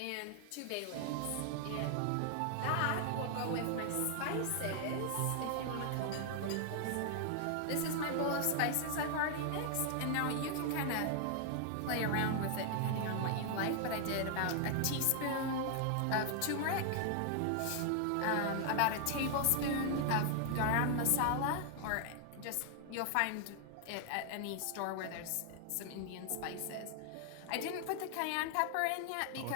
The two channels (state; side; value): different; both; correlation 0.00